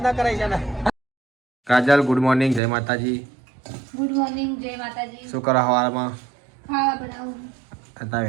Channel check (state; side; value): drops out; left; at 2.6 s